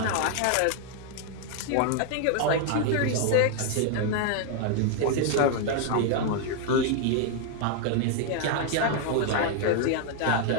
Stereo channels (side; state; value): both; different; correlation 0.00